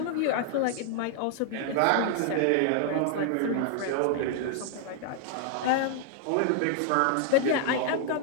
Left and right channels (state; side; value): different; both; correlation 0.00